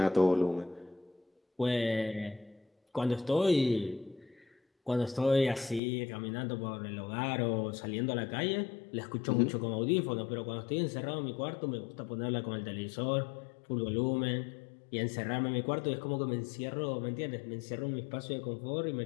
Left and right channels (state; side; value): drops out; right; at 5.8 s